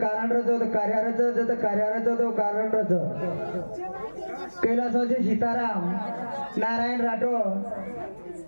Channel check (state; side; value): inverted; both; correlation -1.00